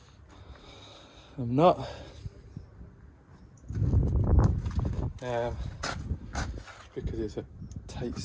I'm not. Because it's a tight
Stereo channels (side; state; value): both; identical; correlation 1.00